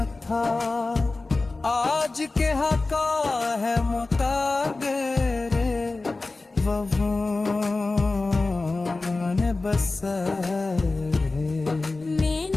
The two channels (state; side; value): quieter; right; 3.4 dB